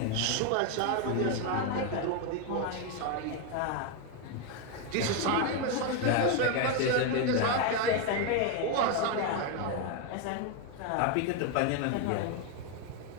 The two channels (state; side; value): different; both; correlation 0.01